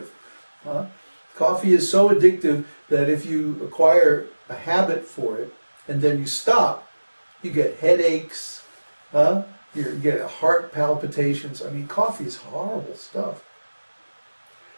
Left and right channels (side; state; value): both; inverted; correlation -1.00